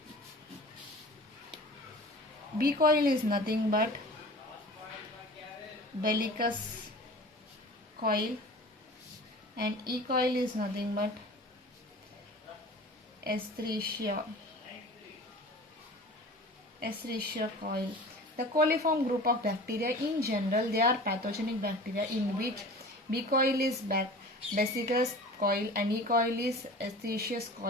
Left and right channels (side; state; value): both; normal; correlation 0.40